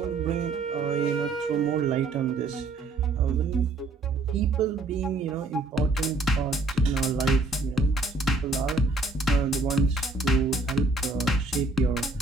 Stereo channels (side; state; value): left; quieter; 3.2 dB